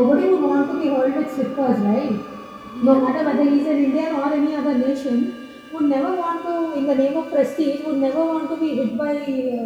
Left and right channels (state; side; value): identical; both; correlation 1.00